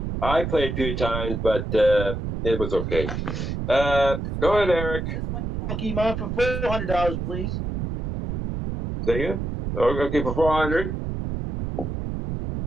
I played a few times, but it was okay. Go ahead, Eric. This one you have Pokemon for $400, please. Say again? Okay, for 400.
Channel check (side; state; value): right; noise; rumble, 4 dB below the sound